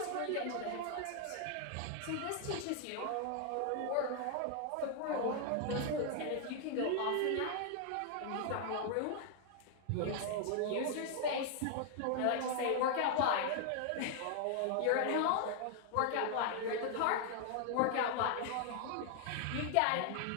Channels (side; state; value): both; different; correlation 0.00